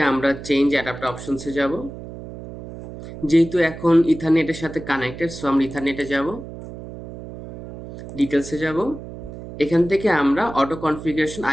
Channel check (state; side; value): noise; right; hum, 12 dB below the sound